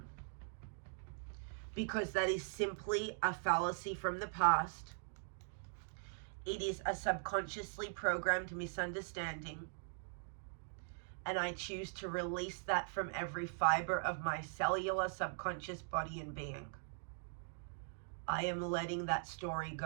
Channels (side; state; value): left; silent; digital silence